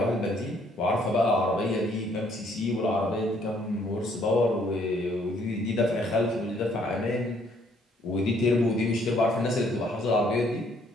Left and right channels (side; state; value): both; normal; correlation 0.65